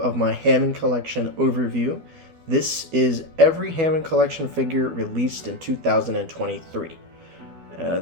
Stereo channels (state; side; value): late; left; 12 ms